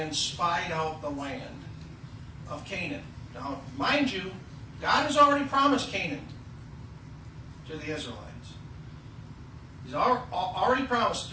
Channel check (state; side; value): identical; both; correlation 1.00